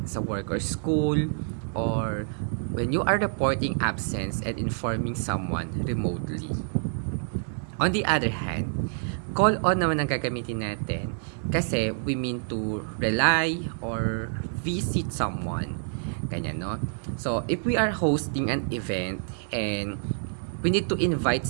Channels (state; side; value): silent; left; digital silence